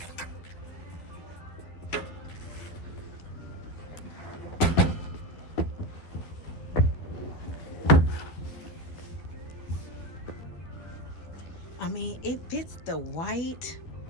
I mean, it fits the white.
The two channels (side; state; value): right; late; 12 ms